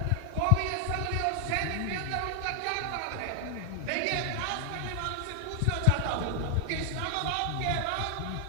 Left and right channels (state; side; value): different; both; correlation 0.00